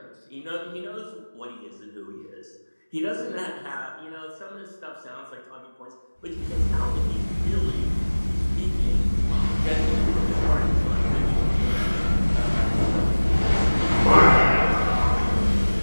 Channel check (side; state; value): both; inverted; correlation -1.00